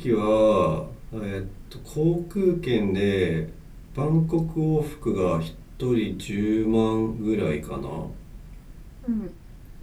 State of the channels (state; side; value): identical; both; correlation 1.00